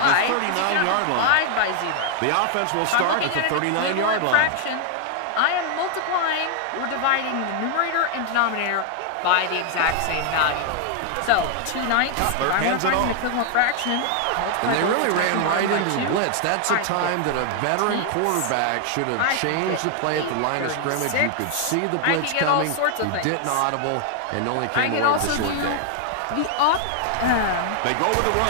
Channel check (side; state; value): both; different; correlation 0.00